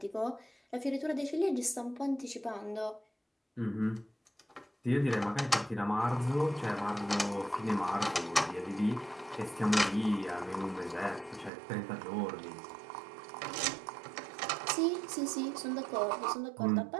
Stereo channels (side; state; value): left; drops out; at 11.5 s